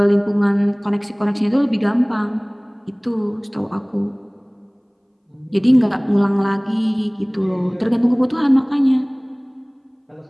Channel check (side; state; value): both; identical; correlation 1.00